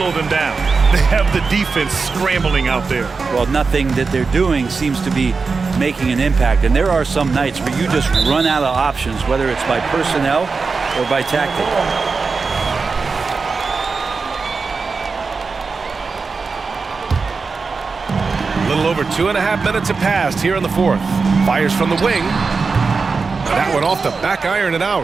them down. They have the defense scrambling out there. Well, nothing that they're doing seems to be making an impact. And there are some nights where you just run out of options, whether it's by personnel or by tactic. A little over 2.5 minutes have passed here in the fourth. Fires from the wing. That one off the back iron and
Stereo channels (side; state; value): left; quieter; 4.6 dB